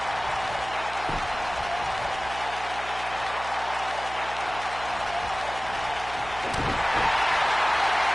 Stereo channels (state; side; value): noise; right; hum, 15 dB below the sound